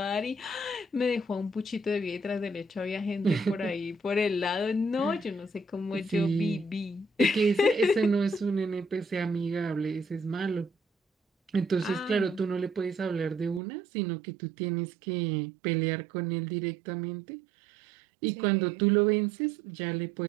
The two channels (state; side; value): drops out; left; at 13.6 s